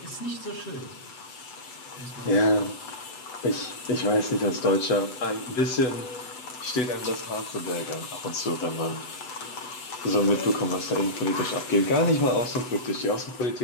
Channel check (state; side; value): late; right; 8.0 ms